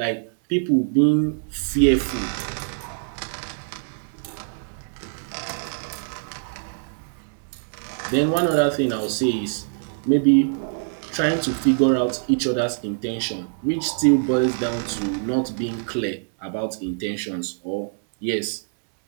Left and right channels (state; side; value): silent; left; digital silence